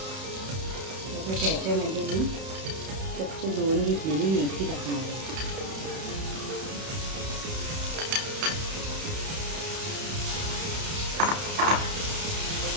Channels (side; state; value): left; late; 31 ms